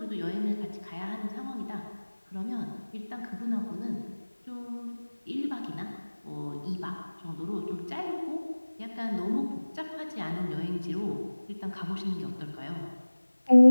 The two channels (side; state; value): both; inverted; correlation -1.00